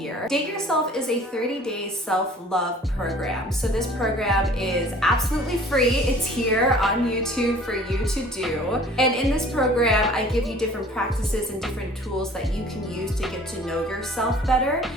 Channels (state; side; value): normal; both; correlation 0.50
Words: Date Yourself is a 30-day self-love program. So this program is absolutely free. It's here on YouTube for you to do. And in this program, I give you different practices and different tools that you can use to get to know yourself better